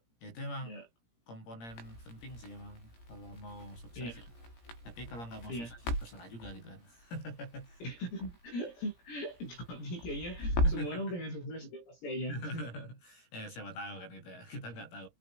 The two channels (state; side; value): late; right; 17 ms